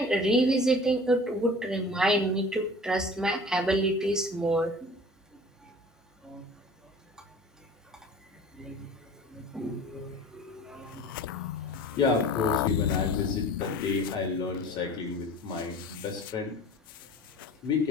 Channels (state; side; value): normal; both; correlation 0.43